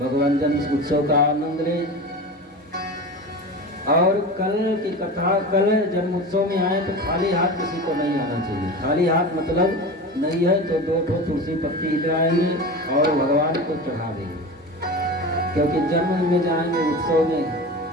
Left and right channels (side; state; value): both; normal; correlation 0.30